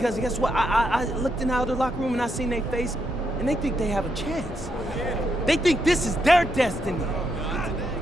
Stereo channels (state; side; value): normal; both; correlation 0.80